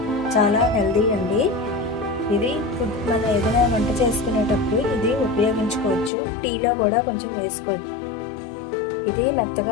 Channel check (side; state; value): right; drops out; at 6.1 s